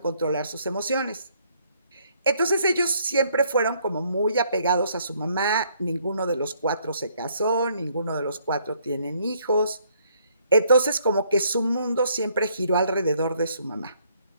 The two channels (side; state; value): both; inverted; correlation -0.67